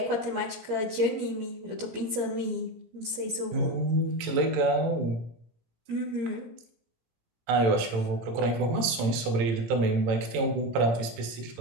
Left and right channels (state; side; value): late; left; 18 ms